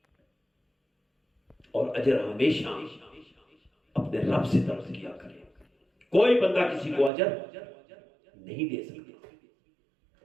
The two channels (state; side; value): drops out; left; at 7.1 s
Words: اور اجر ہمیشہ اپنے رب سے طلب کیا کرے۔ کوئی بندہ کسی کو اجر نہیں دے سکتا۔